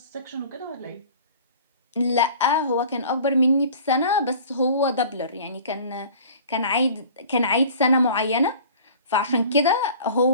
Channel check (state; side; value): inverted; both; correlation -0.45